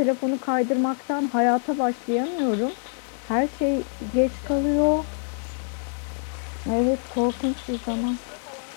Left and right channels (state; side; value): silent; right; 59 dB below the other